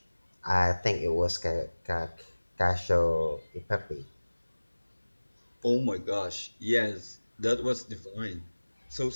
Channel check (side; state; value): both; inverted; correlation -1.00